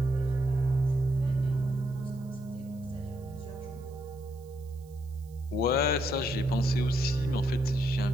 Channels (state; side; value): noise; right; hiss, 29 dB below the sound